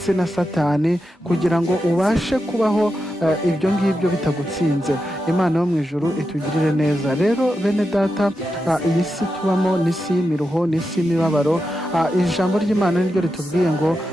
na Satani, kugira ngo ubashe kubaho ibyo ngibyo bitagutsinze. Imana yo mu ijuru itugirire neza. Rero bene data, iyi si tubamo ni isi y'imiruho, ni isi y'imibabaro. Ijambo ry'Imana niryo ritubwiye ngo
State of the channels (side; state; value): both; normal; correlation 0.88